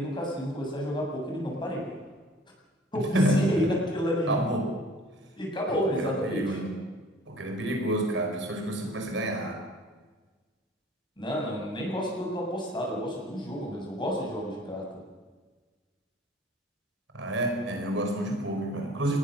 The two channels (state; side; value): normal; both; correlation 0.50